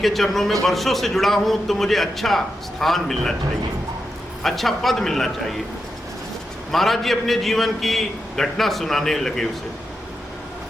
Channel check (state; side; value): normal; both; correlation 0.87